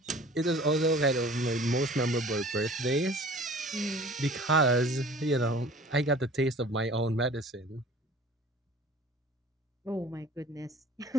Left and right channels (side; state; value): both; normal; correlation 0.46